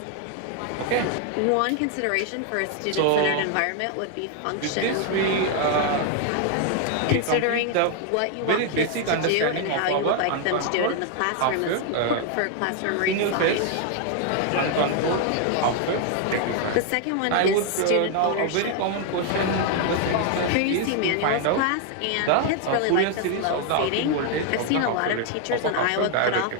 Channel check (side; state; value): both; different; correlation 0.00